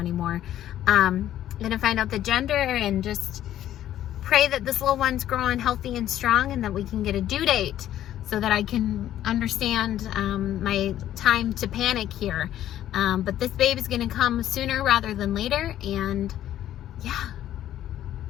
I'm gonna find out the gender and just pray that this little one's growing healthy and strong, and that we can get a due date so that I can understand my time to panic here. But this baby's gonna come sooner rather than later, and yeah,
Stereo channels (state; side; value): quieter; right; 12.1 dB